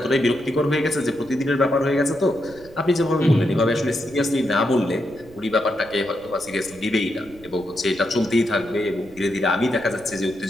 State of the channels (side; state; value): right; noise; rumble, 22 dB below the sound